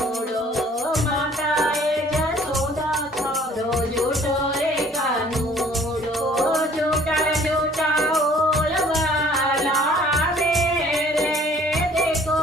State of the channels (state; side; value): normal; both; correlation 0.55